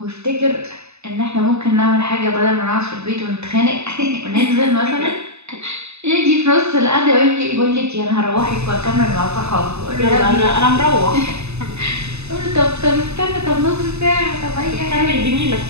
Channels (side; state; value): left; late; 0.80 ms